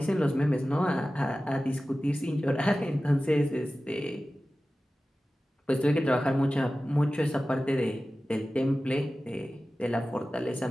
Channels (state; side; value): normal; both; correlation 0.95